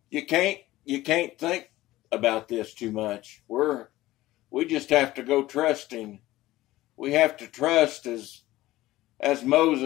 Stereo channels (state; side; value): quieter; right; 16.8 dB